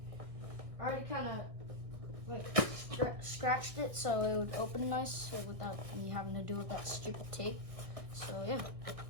I already kind of like scratched it so it would open nice without me having to do with that stupid tape. So yeah.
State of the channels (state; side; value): late; left; 1.6 ms